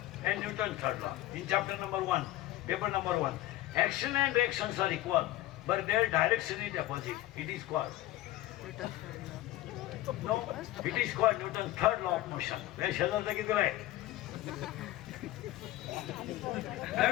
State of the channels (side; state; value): right; quieter; 15.7 dB